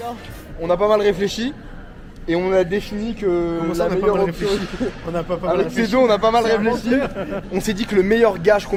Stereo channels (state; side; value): identical; both; correlation 1.00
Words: On a pas mal réfléchi et on a défini que Comment ça, la on a pas meilleure mal option... réfléchi? On a pas mal Avec réfléchi. ces deux, on a pas mal C'est réfléchi. On s'est dit que le meilleur gage qu'on